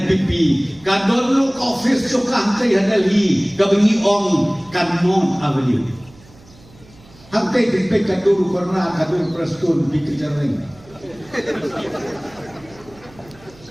kadon lu office suka hantai hadali kabengi ong kanon avenue. Hantai dipek kadur karena kadur prestun dikejareng.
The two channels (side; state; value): right; noise; hum, 25 dB below the sound